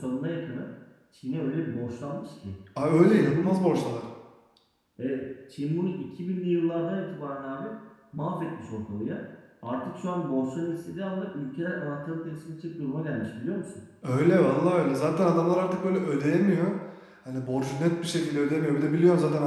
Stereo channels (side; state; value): both; identical; correlation 1.00